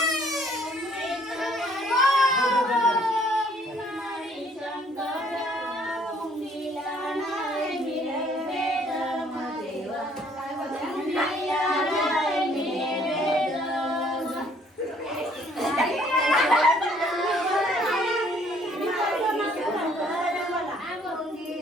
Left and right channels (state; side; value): normal; both; correlation 0.61